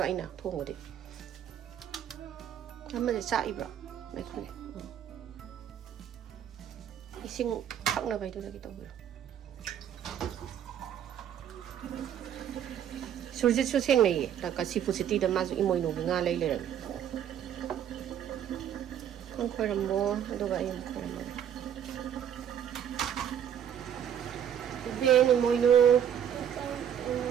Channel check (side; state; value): left; quieter; 9.5 dB